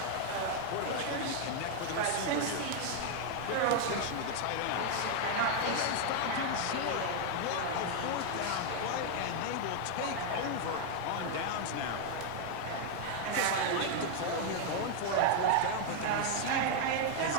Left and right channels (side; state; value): both; different; correlation 0.00